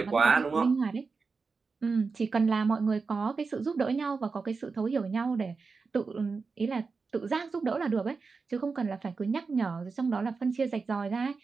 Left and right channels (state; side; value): quieter; left; 4.6 dB